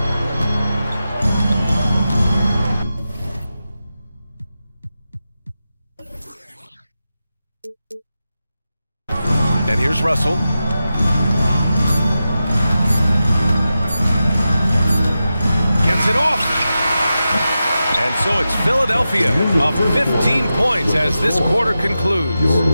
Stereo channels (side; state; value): both; inverted; correlation -0.91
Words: And here's Russell. Gets it off. And so it's Philadelphia of 15 points as this quarter concludes.